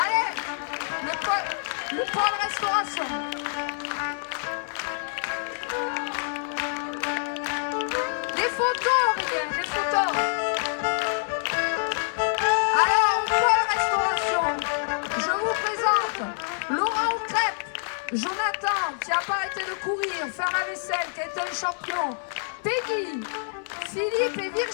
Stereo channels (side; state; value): right; silent; digital silence